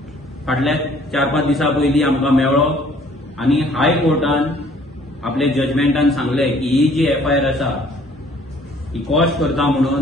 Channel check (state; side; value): normal; both; correlation 0.57